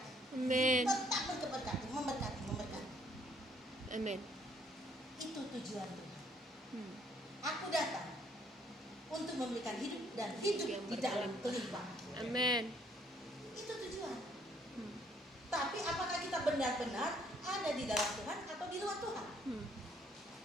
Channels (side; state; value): both; normal; correlation 0.65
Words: Amin. Tetap memberkati. Amin. Itu tujuan Tuhan. Aku datang untuk memberikan hidup dan hidup Yang di dalam kelimpahan. Amin. Itu tujuan. Tapi apakah kita benar-benar ada di dalam Tuhan atau di luar Tuhan?